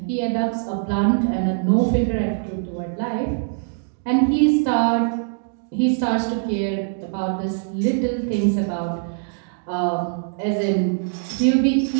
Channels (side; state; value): left; silent; digital silence